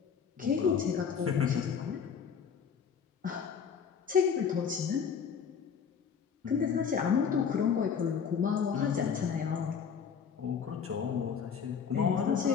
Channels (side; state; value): right; quieter; 6.8 dB